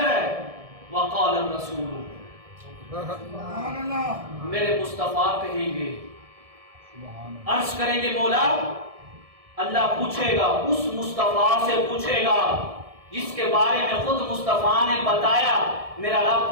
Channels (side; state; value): left; late; 1.7 ms